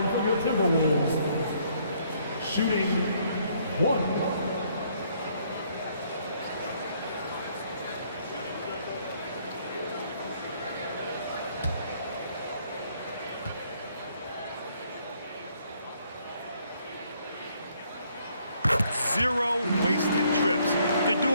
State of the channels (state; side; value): inverted; both; correlation -0.67